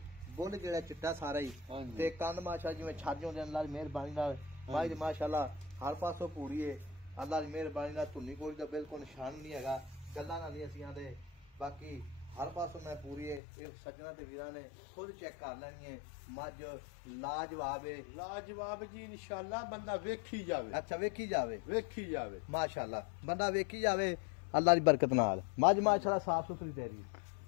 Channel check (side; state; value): right; drops out; at 13.4 s